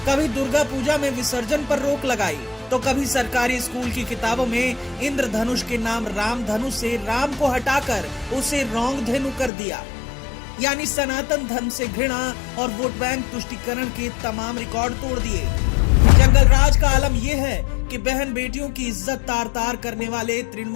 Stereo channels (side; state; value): right; drops out; at 9.5 s